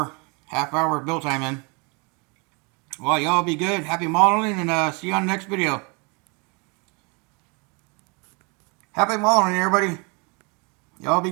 half hour of build time in. Well, y'all be good. Happy modeling, and see you on the next video. Happy modeling, everybody. Y'all be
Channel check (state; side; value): quieter; left; 31.2 dB